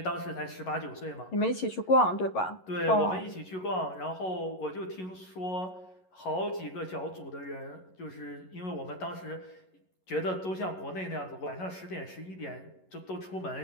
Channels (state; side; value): late; right; 11 ms